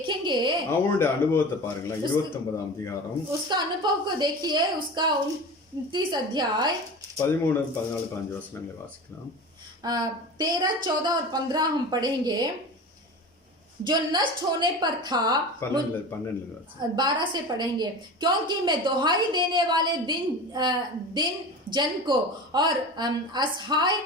அவனுடைய அனுபவத்தை பாருங்களேன். 29ஆம் அதிகாரம் उसका अनुभव को देखिए, उसका 29 अध्याय 13, 14, 15 वचनங்களை வாசிக்கலாம். 13, 14 और 15 हम पढ़ेंगे। जो नष्ट होने पर था, 12 से पढ़ेंगे। क्योंकि मैं दुहाई देने वाले दिन जन को और असहाय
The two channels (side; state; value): both; normal; correlation 0.32